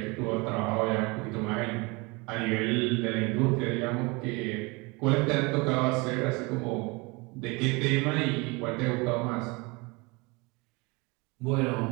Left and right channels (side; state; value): left; quieter; 26.8 dB